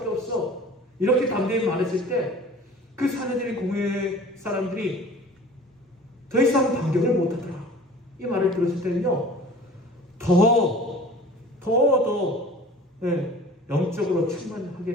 없어, 이렇게 담대히 말했을 때 그 사내들인 공회 사람들이 더 이상 반격을 못하더라. 이 말을 들었을 때는요, 더 영적으로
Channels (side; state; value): both; normal; correlation 0.44